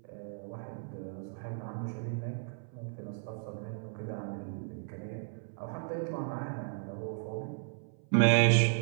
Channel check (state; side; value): silent; left; 55 dB below the other